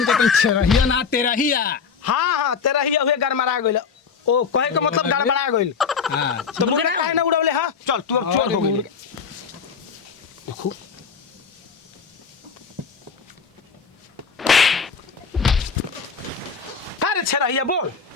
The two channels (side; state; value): right; quieter; 5.9 dB